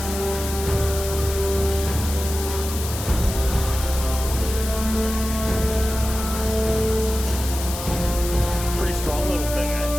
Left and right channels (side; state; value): left; noise; hiss, 8 dB below the sound